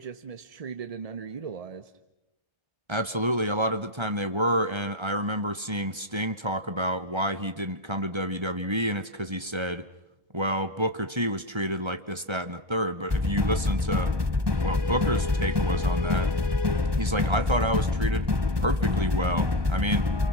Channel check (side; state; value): left; late; 1.3 ms